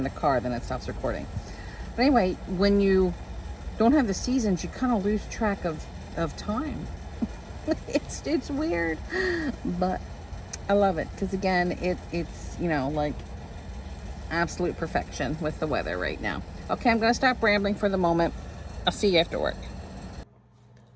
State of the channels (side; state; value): both; identical; correlation 1.00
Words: the car, then it stops recording. But anyway, when you don't have the seasons, you kind of lose track of time. It's weird, but I love it because again, it's you know, like absolute perfection with the weather right now. Okay, I'm gonna stop rambling for the moment. I'll see you after work.